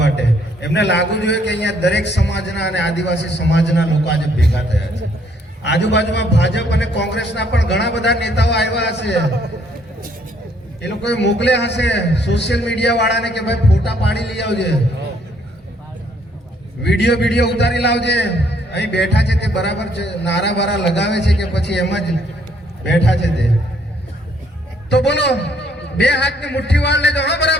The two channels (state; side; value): normal; both; correlation 0.67